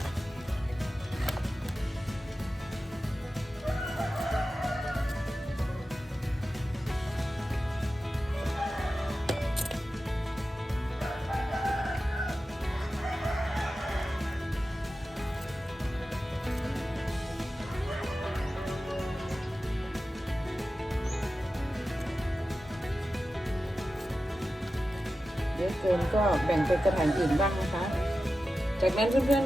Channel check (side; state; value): both; normal; correlation 0.93